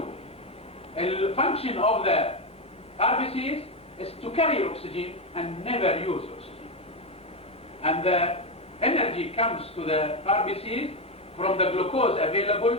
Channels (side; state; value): both; normal; correlation 0.10